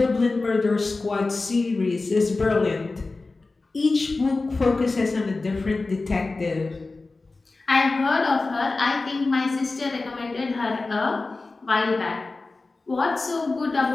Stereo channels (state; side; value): quieter; right; 3.5 dB